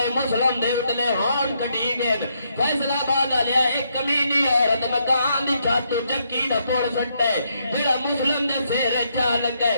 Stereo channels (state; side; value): inverted; both; correlation -0.76